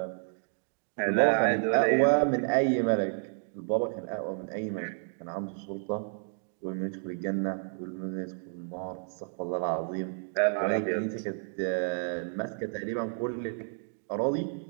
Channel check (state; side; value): silent; left; 56 dB below the other